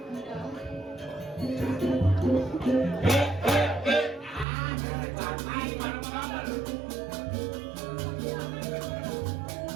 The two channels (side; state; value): left; drops out; at 4.5 s